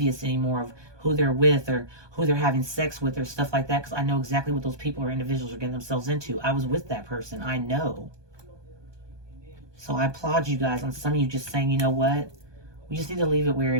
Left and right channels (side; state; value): left; late; 1.2 ms